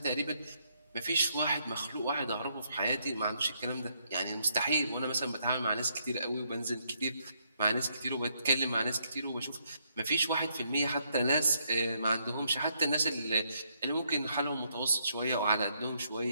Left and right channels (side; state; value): both; inverted; correlation -0.74